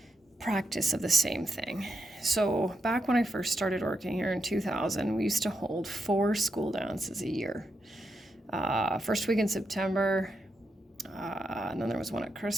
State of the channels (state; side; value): normal; both; correlation 0.83